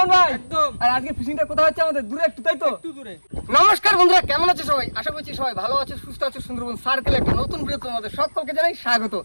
ভাই? একদম। আর আজকে ফিশিংটা কোথায় হচ্ছে? আমাদের দূরে একটু, তাই তো? একটু দূরে। নমস্কার বন্ধুরা, কেমন আছে সবাই? আশা করছি সবাই ভালো আছে, সুস্থ আছে। সুন্দরবন সার্কেল একটা নতুন ভিডিও তোমাদের সকলকে জানাই স্বাগত।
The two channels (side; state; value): both; inverted; correlation -1.00